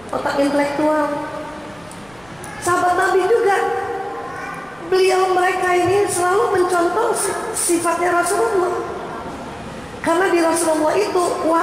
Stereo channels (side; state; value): right; noise; rumble, 28 dB below the sound